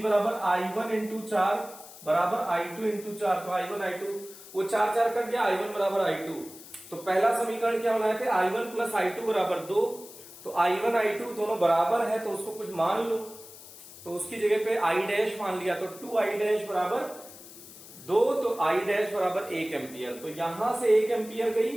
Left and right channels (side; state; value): left; noise; hiss, 17 dB below the sound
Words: बराबर I1 × 4 बराबर I2 × 4। तो I1 I2 वो 4 4 कट गया, I1 बराबर I2। तो पहला समीकरण क्या बनाए थे, I1 + I2 बराबर 2। तो I1 I2 दोनों बराबर है तो उसको कुछ मान लो, तो उसकी जगह पे I' मान लिया, तो 2I' बराबर 2, तो I' बराबर 1 एम्पियर। तो यहां से 1 एम्पियर